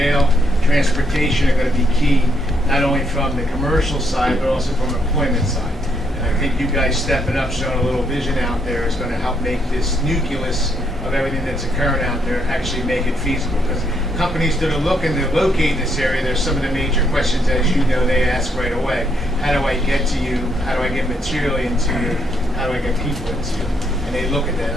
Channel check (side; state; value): both; normal; correlation 0.75